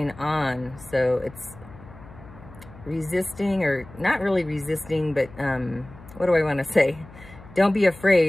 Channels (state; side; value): noise; left; hum, 19 dB below the sound